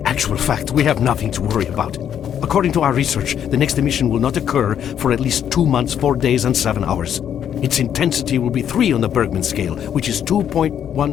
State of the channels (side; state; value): right; quieter; 9.3 dB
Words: actual fact, we have nothing to worry about. According to our research, the next emission will not occur for at least 2 months, 4 days, and 7 hours. Its intensity will be 3 on the Bergman scale, which is